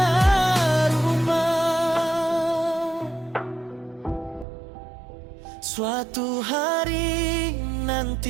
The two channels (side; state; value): left; drops out; at 4.5 s